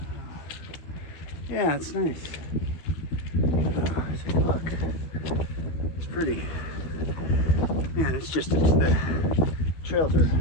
Yeah, it's nice. Take a look. It's pretty. Man, it's just the trails are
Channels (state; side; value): late; right; 13 ms